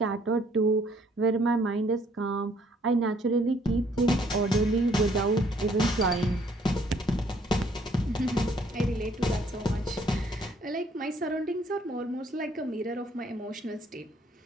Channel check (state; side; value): normal; both; correlation 0.64